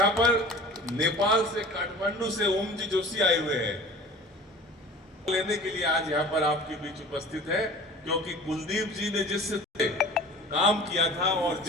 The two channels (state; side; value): normal; both; correlation 0.42